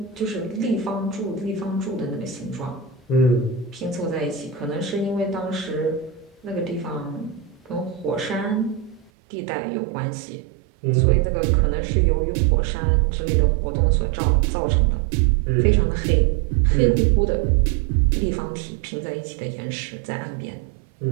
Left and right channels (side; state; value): left; drops out; at 9.1 s